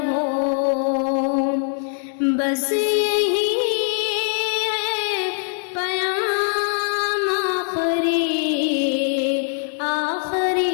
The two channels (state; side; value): silent; right; digital silence